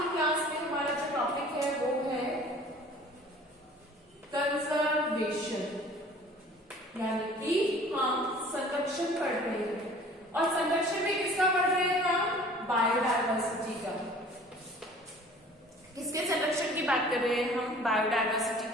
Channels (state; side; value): normal; both; correlation 0.48